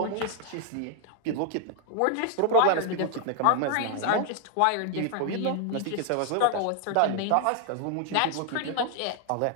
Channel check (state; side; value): different; both; correlation 0.00